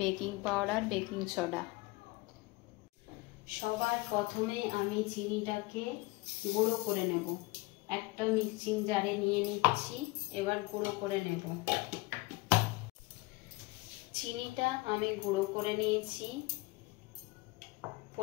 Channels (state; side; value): quieter; right; 23.3 dB